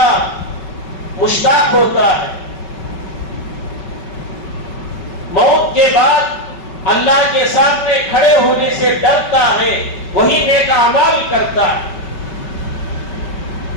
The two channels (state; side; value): late; right; 5.2 ms